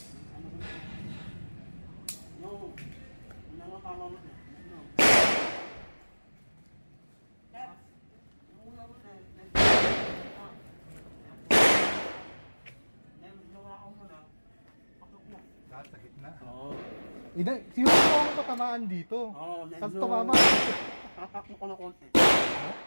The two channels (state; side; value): inverted; both; correlation -1.00